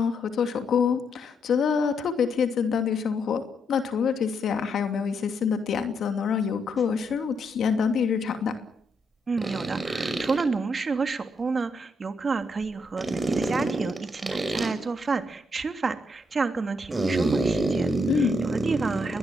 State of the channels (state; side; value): normal; both; correlation 0.77